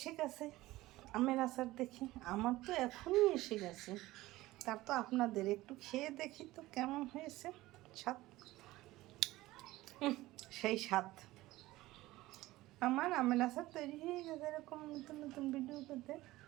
গেছে আমের আচার দেখে? আমার তো এখনই এসে গেছে। তার তো আপনাদের একটু খেয়ে দেখি তো কেমন হয়েছে স্বাদ। সেই স্বাদ। আমার আমের আচার তৈরি হয়ে গেছে। এরকম নতুন নতুন ভিডিও পেতে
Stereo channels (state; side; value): quieter; left; 17.8 dB